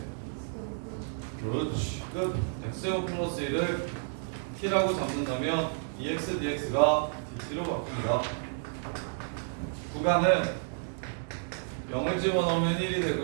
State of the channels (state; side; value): silent; left; digital silence